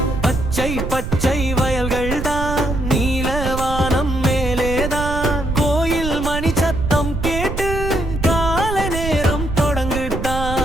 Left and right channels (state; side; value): noise; right; rumble, 5 dB below the sound